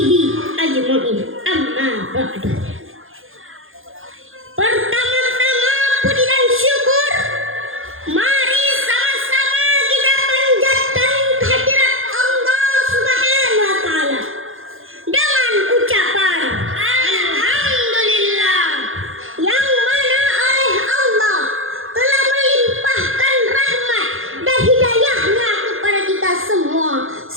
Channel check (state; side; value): late; left; 0.60 ms